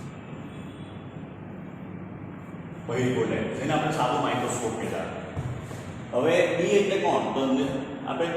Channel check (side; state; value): both; identical; correlation 1.00